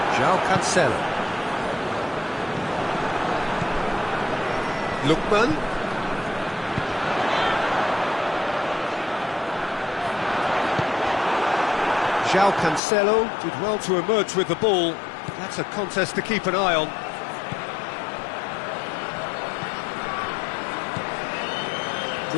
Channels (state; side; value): drops out; right; at 12.8 s